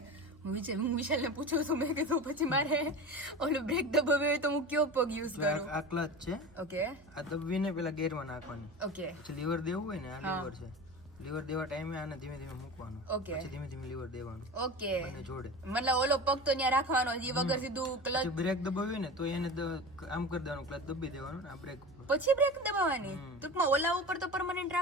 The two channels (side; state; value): right; noise; hum, 25 dB below the sound